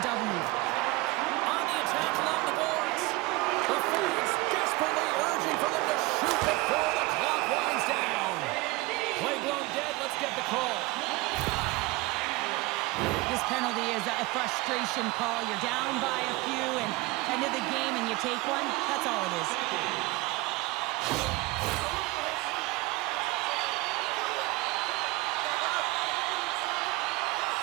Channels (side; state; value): left; quieter; 21.7 dB